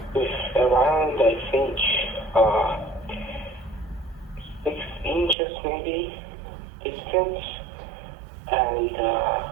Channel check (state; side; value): drops out; left; at 5.4 s